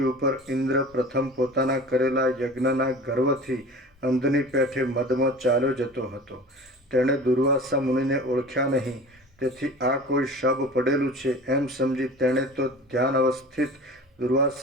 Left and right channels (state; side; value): normal; both; correlation 0.39